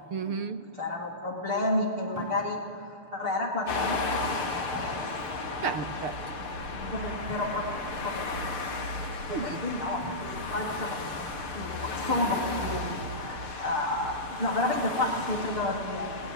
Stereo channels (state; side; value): late; left; 6.7 ms